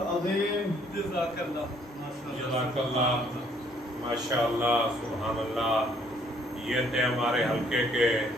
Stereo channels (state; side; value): normal; both; correlation 0.64